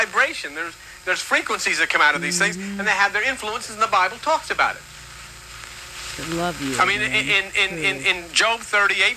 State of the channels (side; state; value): both; identical; correlation 1.00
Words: There's frequencies that come out of these things, and they have their influences, and the Bible talks about it. I love you. I mean, in Job